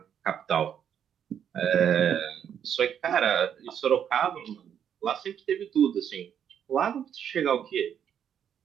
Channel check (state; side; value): quieter; left; 8.8 dB